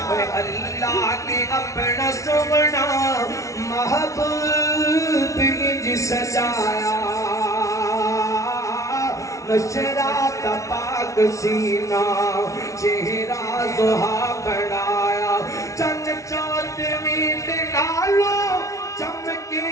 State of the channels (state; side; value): late; right; 0.15 ms